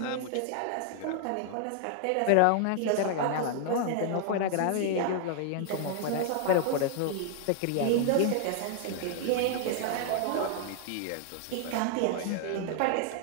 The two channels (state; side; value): different; both; correlation 0.00